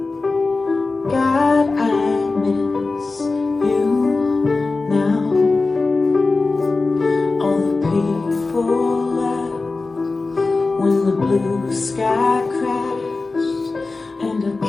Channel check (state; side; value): quieter; right; 3.7 dB